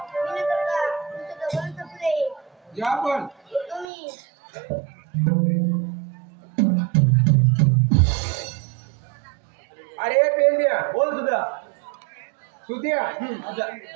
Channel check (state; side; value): drops out; left; at 3.9 s